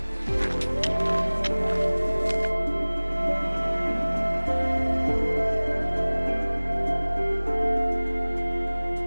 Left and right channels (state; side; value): inverted; both; correlation -1.00